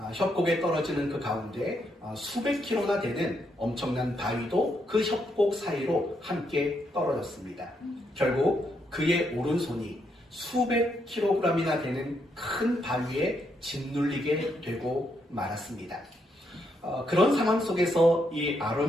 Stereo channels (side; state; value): both; normal; correlation 0.78